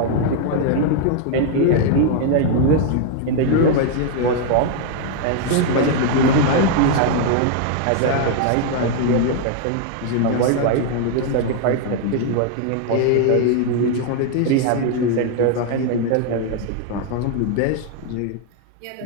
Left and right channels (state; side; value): different; both; correlation 0.00